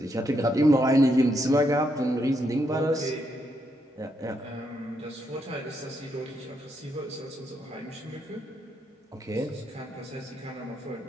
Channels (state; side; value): normal; both; correlation 0.78